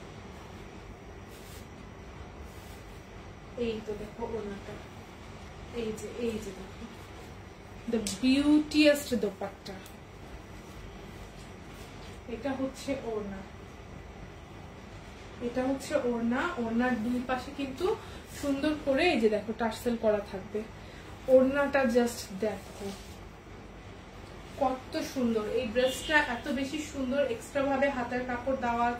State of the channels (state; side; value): identical; both; correlation 1.00